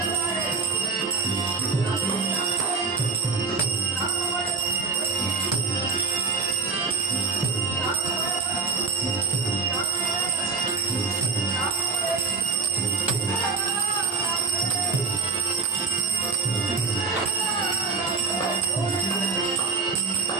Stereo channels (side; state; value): left; quieter; 4.5 dB